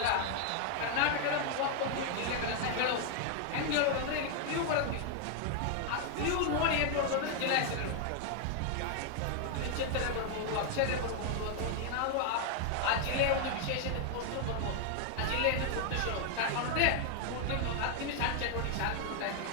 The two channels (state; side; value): different; both; correlation 0.00